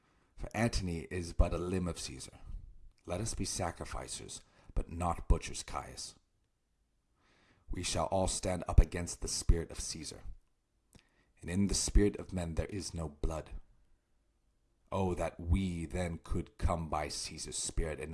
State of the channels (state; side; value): identical; both; correlation 1.00